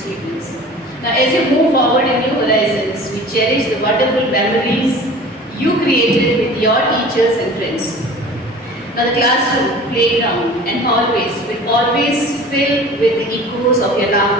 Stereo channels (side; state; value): both; normal; correlation 0.42